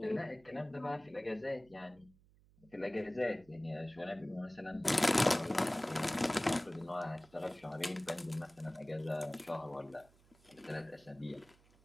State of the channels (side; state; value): right; noise; hum, 28 dB below the sound